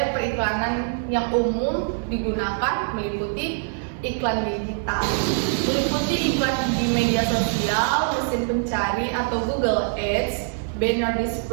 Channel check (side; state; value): left; silent; digital silence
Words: periklanan yang umum digunakan meliputi iklan digital, meliputi iklan di media sosial, mesin pencari atau Google Ads, banner